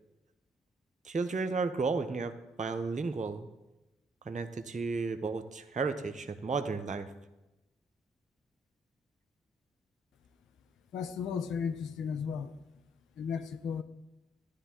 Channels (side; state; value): both; normal; correlation 0.69